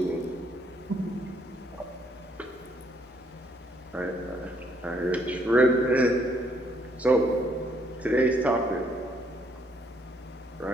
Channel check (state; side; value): normal; both; correlation 0.68